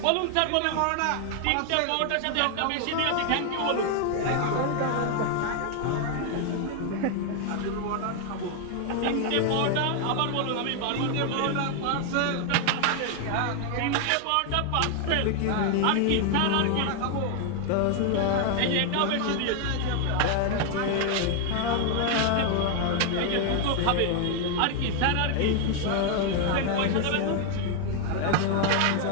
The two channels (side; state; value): both; different; correlation 0.00